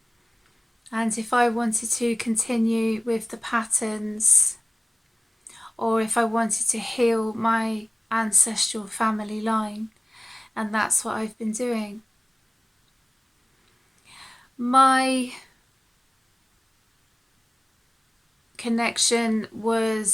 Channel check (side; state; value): both; normal; correlation 0.96